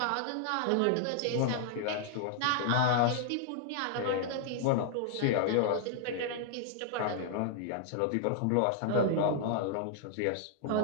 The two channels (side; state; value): both; different; correlation -0.01